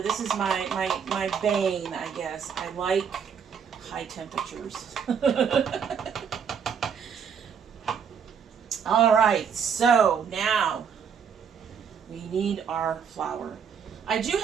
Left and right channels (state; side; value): quieter; left; 7.1 dB